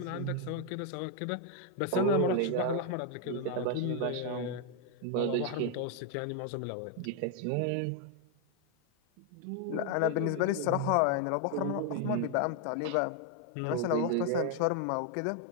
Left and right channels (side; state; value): both; different; correlation 0.00